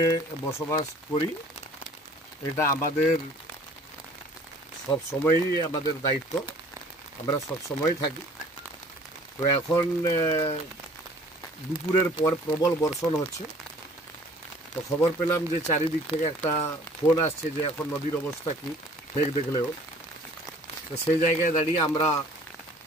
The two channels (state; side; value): normal; both; correlation 0.52